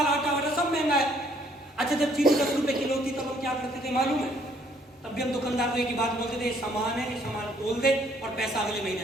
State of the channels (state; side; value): normal; both; correlation 0.64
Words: आटा वगैरह सब महंगा है। अच्छा, जब चीनी 10 रुपए किलो थी तब हम क्या करते थे मालूम है? तब भी हम दुकानदार को एक ही बात बोलते थे, सामान है, सामान तोल दे और पैसा अगले महीने